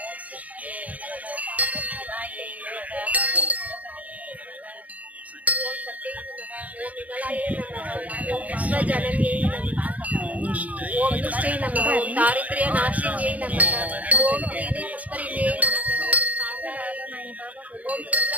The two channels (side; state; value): left; late; 0.072 ms